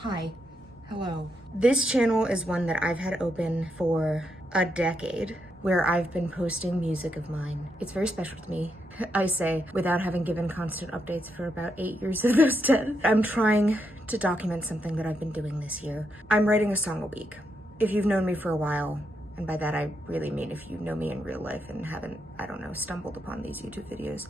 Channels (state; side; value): normal; both; correlation 0.80